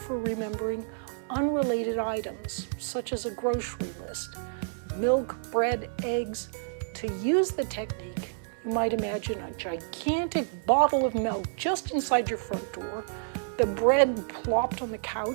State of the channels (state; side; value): silent; left; digital silence